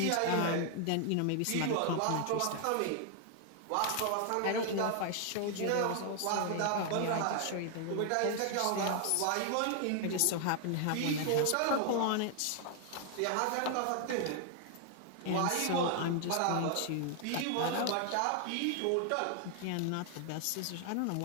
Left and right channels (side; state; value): both; different; correlation 0.00